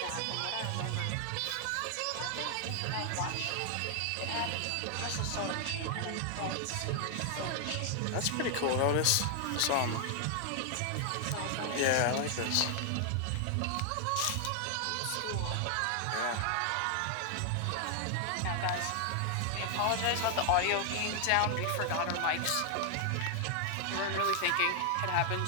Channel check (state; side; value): different; both; correlation 0.00